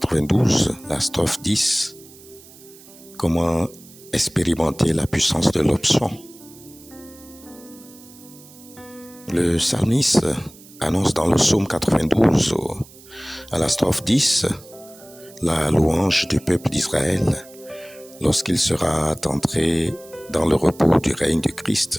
la strophe 10. Comment expérimenter la puissance de l'option. Le psalmiste annonce dans le psaume 92, à la strophe 10, la louange du peuple d'Israël lorsqu'il sera entré dans le repos du règne de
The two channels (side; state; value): right; noise; hiss, 22 dB below the sound